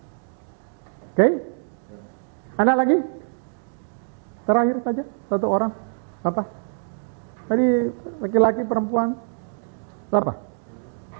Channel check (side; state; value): left; silent; 62 dB below the other